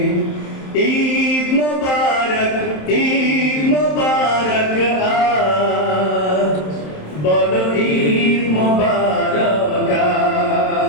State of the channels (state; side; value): late; right; 27 ms